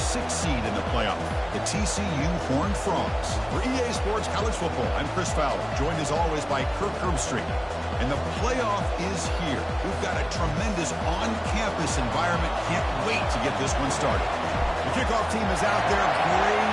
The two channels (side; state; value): both; identical; correlation 1.00